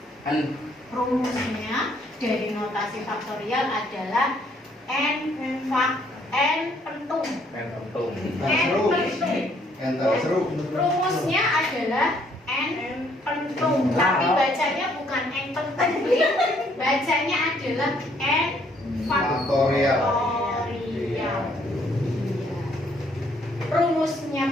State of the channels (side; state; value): both; normal; correlation 0.66